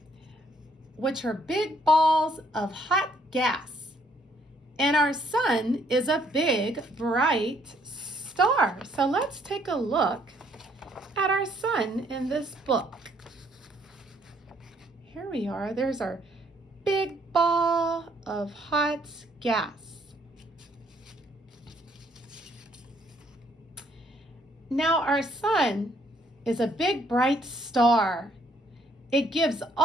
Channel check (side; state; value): both; normal; correlation 0.67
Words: which are big balls of hot gas. And our sun is a big, bright star. So let's take a look at our sun in this book. Here we are. There's our big ball of hot gas. Now our sun is a big, bright star. It gives